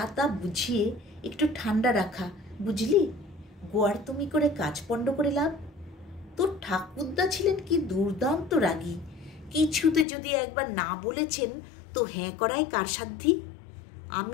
তা বুঝিয়ে একটু ঠান্ডা রাখা, বুঝলি? গোয়ার তুমি করে কাজ পণ্ড করে লাভ। তোর ঠাকুরদা ছিলেন কি দুর্দান্ত রাগী, কিছুতে যদি একবার না বলেছেন তো হ্যাঁ করায় কার সাধ্যি?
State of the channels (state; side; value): drops out; right; at 10.1 s